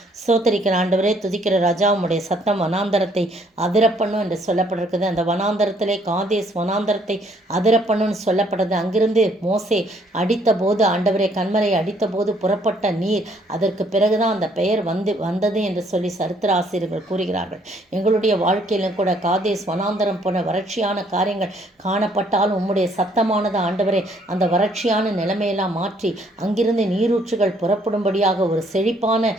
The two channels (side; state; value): both; normal; correlation 0.65